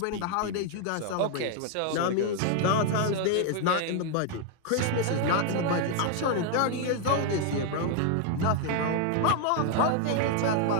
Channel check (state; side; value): different; both; correlation 0.00